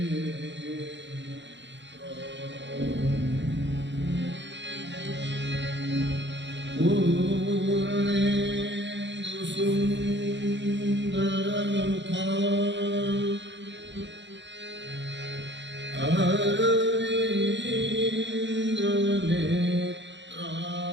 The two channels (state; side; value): late; left; 0.52 ms